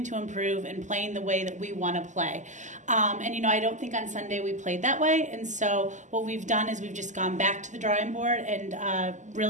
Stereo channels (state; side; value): late; left; 0.35 ms